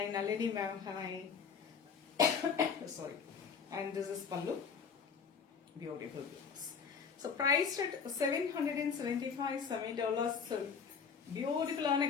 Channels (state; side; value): quieter; right; 6.2 dB